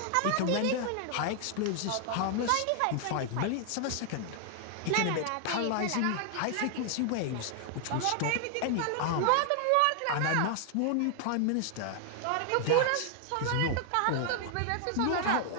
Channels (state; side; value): different; both; correlation 0.00